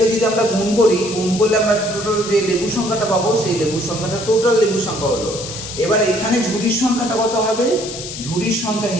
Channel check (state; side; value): noise; left; hiss, 9 dB below the sound